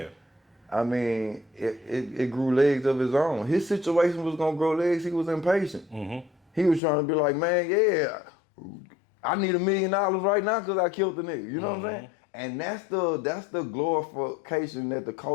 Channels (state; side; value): drops out; right; at 6.8 s